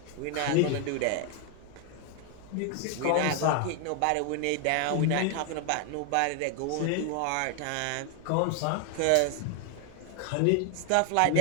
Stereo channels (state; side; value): different; both; correlation 0.01